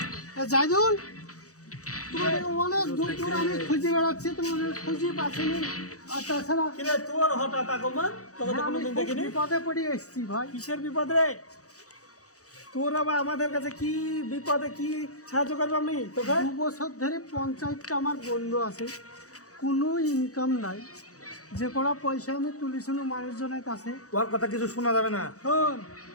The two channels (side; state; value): right; late; 0.66 ms